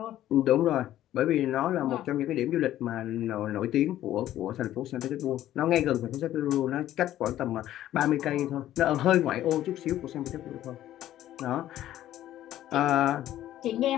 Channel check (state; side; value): quieter; right; 13.0 dB